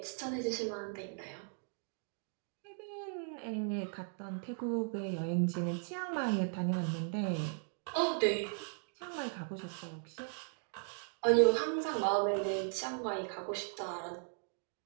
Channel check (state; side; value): silent; left; 53 dB below the other